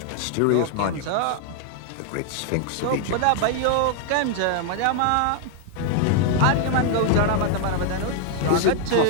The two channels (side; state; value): both; different; correlation 0.00